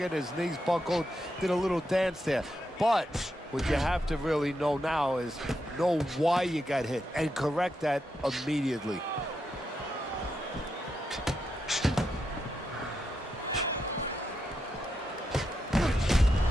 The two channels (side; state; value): both; normal; correlation 0.84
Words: his knees buckled, did a little dance there. But what you have to really know now is know why you got hit and correct that immediately.